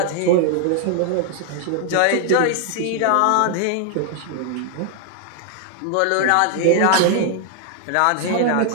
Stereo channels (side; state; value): both; different; correlation 0.00